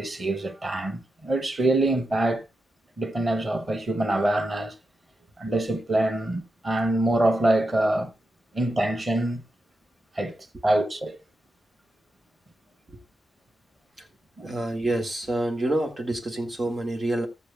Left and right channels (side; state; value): both; normal; correlation 0.88